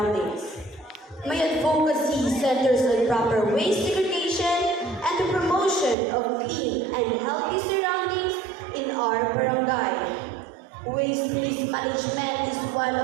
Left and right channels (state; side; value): drops out; left; at 6.0 s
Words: My advocacy centers on proper waste segregation and the promotion of clean and healthy surroundings in our barangay. Waste mismanagement is one